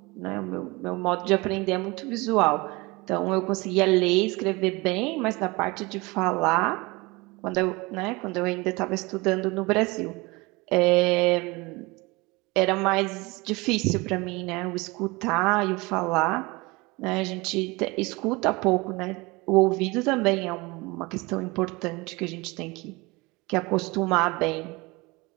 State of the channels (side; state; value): left; quieter; 24.3 dB